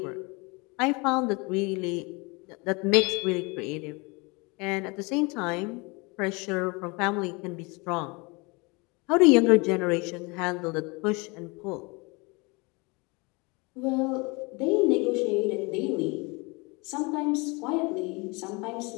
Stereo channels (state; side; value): quieter; right; 27.9 dB